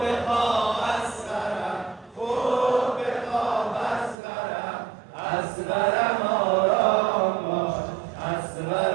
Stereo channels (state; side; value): drops out; left; at 4.2 s